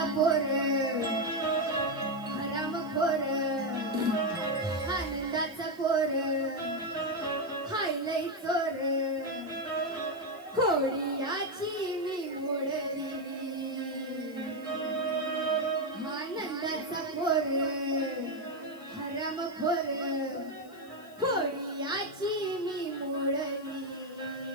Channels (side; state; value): left; noise; hiss, 26 dB below the sound